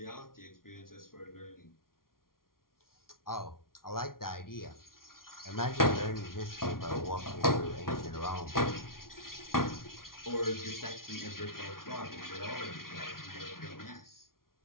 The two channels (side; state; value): right; late; 0.92 ms